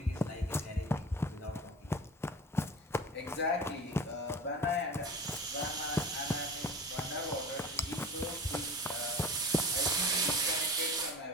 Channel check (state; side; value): normal; both; correlation 0.35